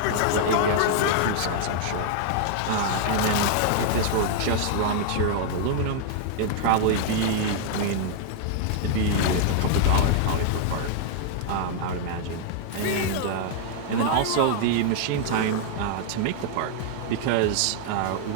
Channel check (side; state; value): both; different; correlation -0.01